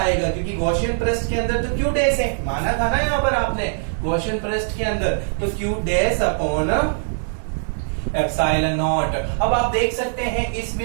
क्योंकि गॉसियन पृष्ठ के अंदर तो q डैश है, माना था ना यहाँ पर आपने गॉसियन पृष्ठ के अंदर। तो q dash upon epsilon not. अब आप देख सकते हैं इस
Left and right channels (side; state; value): left; silent; digital silence